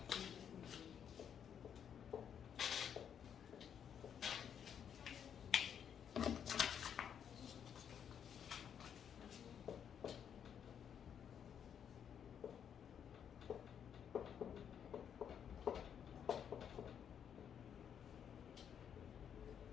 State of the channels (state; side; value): quieter; right; 8.3 dB